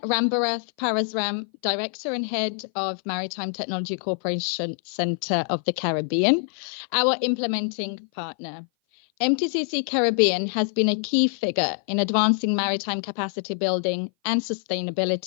Rambarath Parasram, Director and Head of Maritime Technology Corporation Center of the Caribbean, our implementing partner. MTCC Caribbean has been a key figure in advancing maritime capacity building and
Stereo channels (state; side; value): silent; right; 57 dB below the other